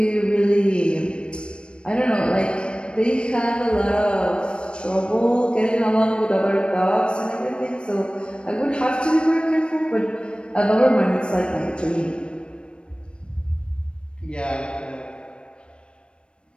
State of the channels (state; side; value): late; right; 0.056 ms